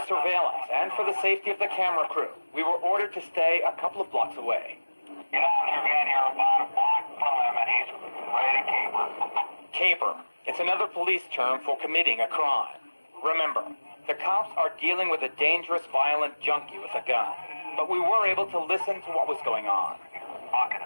surveillance and for the safety of the camera crew, we were ordered to stay a couple of blocks away. Get out of your van here about a block from him, and he's ready to caper. Caper. It's another police term for committing a crime. Remember, the cops are dealing with a dangerous, violent junkie with a gun. But we were able to listen to what was going on. Walking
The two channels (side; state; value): both; inverted; correlation -1.00